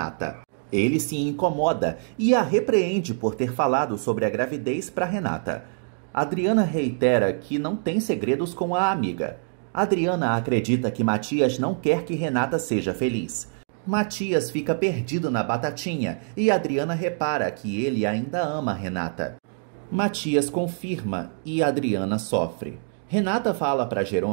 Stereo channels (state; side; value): silent; left; digital silence